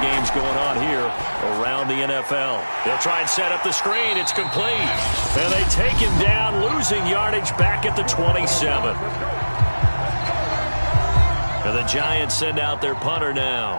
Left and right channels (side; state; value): both; inverted; correlation -1.00